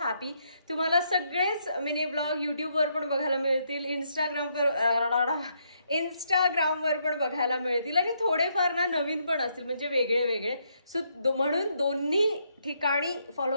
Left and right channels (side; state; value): both; inverted; correlation -0.75